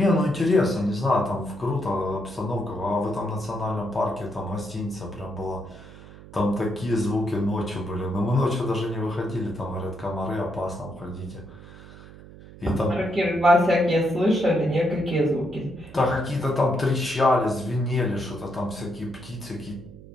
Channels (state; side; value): noise; right; hum, 18 dB below the sound